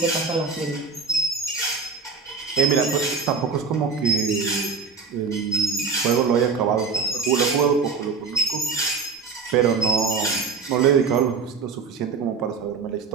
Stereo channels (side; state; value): left; quieter; 5.1 dB